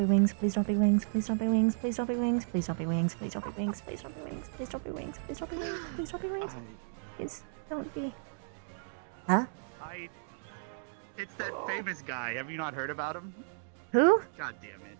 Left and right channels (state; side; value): silent; left; digital silence